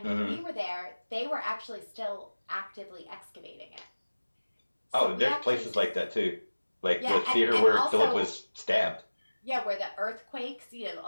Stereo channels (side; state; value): both; inverted; correlation -1.00